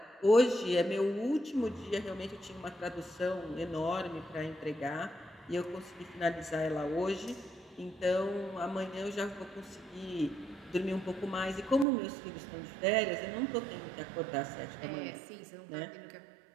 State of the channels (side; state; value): left; drops out; at 11.9 s